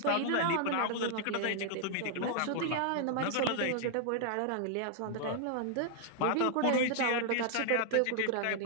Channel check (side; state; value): both; different; correlation -0.01